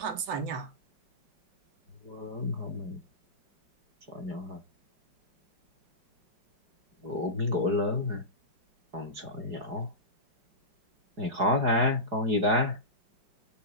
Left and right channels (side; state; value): left; late; 4.8 ms